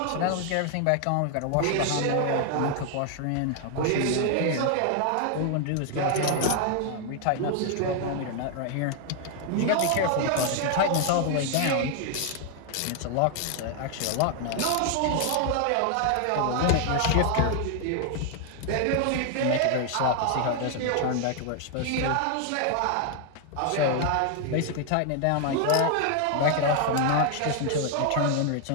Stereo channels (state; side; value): different; both; correlation 0.00